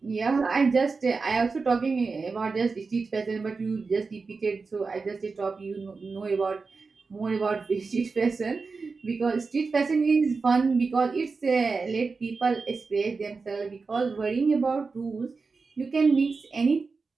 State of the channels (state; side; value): quieter; left; 4.4 dB